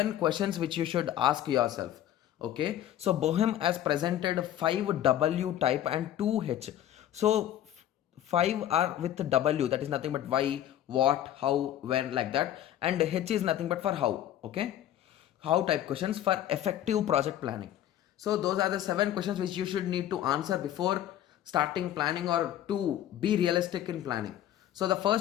questions which you should ask yourself. Okay. So Bohem has presented 5 W type and 2 H. So 5 are with W, that is nothing but why, what, how, when, like that, and H is nothing but for how. Okay, how type questions for effective project planning. So those are the 7 questions which you should need to answer before starting planning or to be realistic in planning. So the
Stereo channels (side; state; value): right; quieter; 11.8 dB